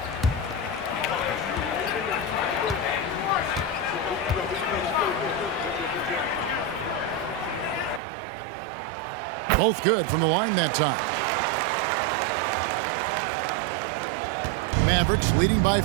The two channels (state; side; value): drops out; left; at 8.0 s